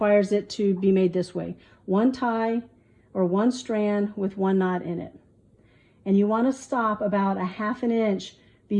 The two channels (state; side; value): identical; both; correlation 1.00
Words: it to be made this way: 1 tie or 1 strand with 1 knot in it. And you want to stop about a 1/2 inch